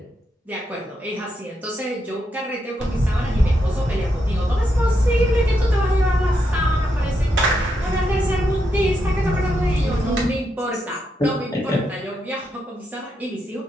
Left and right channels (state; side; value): normal; both; correlation 0.82